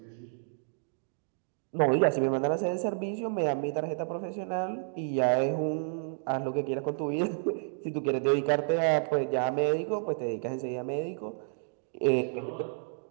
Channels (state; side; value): silent; left; digital silence